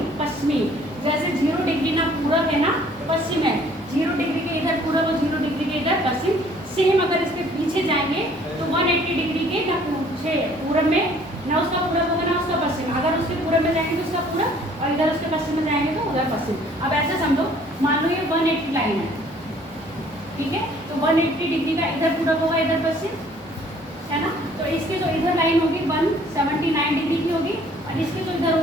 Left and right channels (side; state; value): both; normal; correlation 0.57